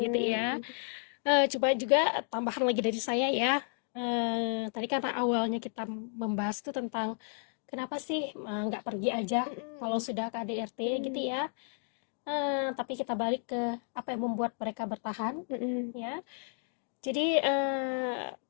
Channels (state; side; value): silent; right; digital silence